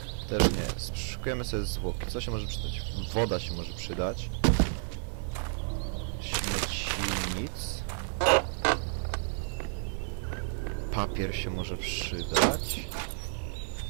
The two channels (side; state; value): left; silent; digital silence